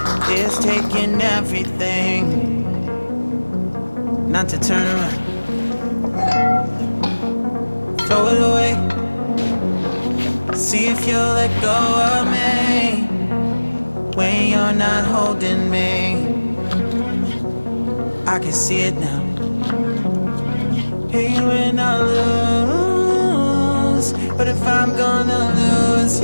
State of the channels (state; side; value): inverted; both; correlation -1.00